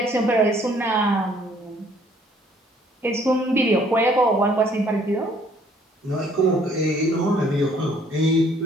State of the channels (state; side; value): normal; both; correlation 0.61